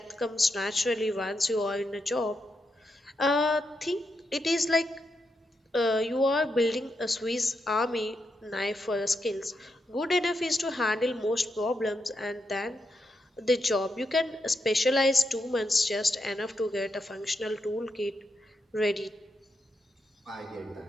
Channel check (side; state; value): both; normal; correlation 0.84